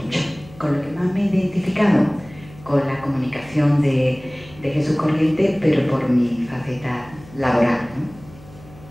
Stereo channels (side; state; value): left; noise; hum, 21 dB below the sound